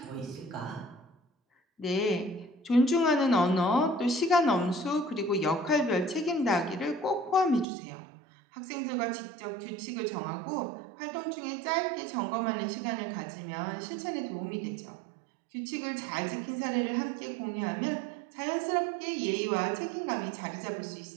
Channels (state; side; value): drops out; left; at 7.7 s